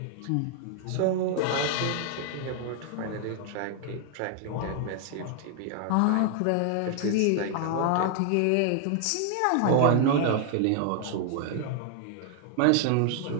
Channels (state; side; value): different; both; correlation 0.00